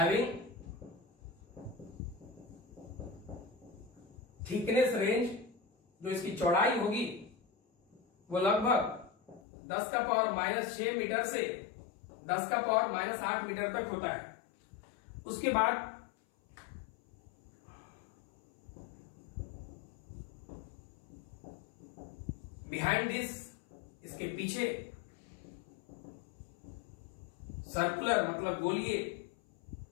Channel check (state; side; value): drops out; right; at 9.4 s